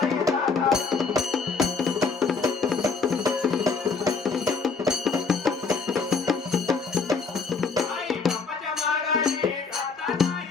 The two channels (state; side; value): quieter; right; 4.9 dB